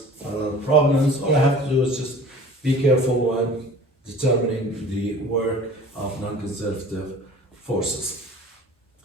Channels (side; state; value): both; normal; correlation 0.44